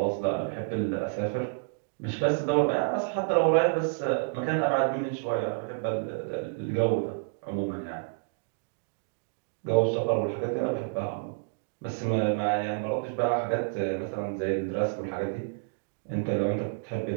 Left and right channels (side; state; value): left; silent; digital silence